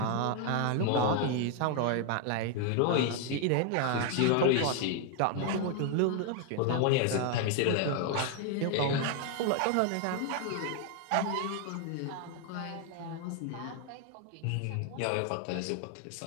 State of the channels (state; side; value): different; both; correlation 0.00